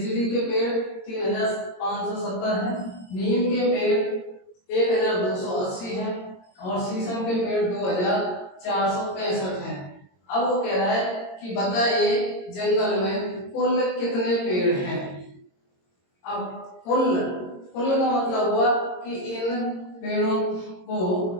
के पेड़ 3570 है। नीम के पेड़ 1280 है और शीशम के पेड़ 2465 है। अब वो कह रहा है कि बताइए जंगल में कुल कितने पेड़ हैं। अब कुल का मतलब हुआ कि इन पेड़ों को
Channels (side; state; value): right; late; 22 ms